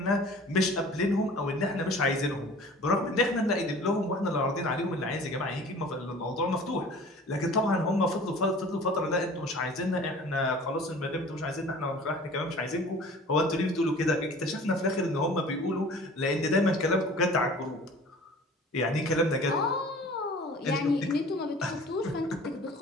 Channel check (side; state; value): both; normal; correlation 0.45